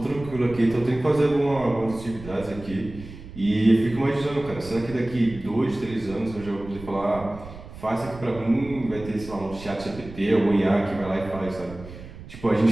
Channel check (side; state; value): right; noise; rumble, 15 dB below the sound